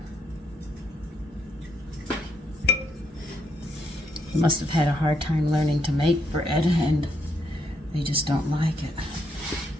They must have had a hard time learning to make bread, and they just don't like it.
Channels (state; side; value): normal; both; correlation 0.75